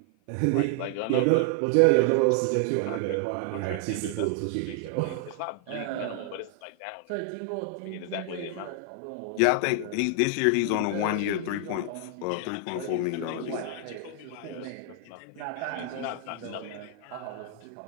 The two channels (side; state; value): both; different; correlation 0.00